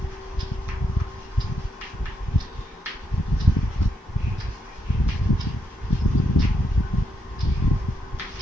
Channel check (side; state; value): both; normal; correlation 0.79